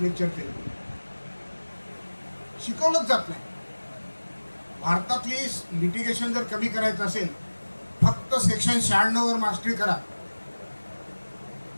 लेक्चर केले, शिकवलंच जात नाही. भारतातली लिटिगेशन जर कमी करायचं असेल, फक्त सेक्शन 96 वर मास्टरी करा,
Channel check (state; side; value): inverted; both; correlation -1.00